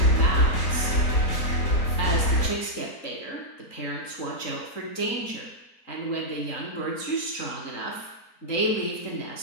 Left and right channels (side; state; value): right; late; 3.8 ms